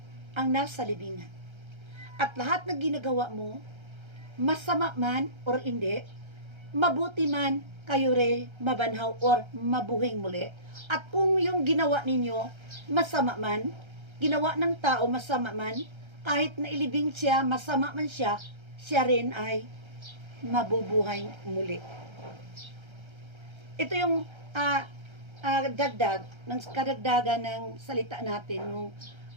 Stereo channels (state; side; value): late; left; 1.3 ms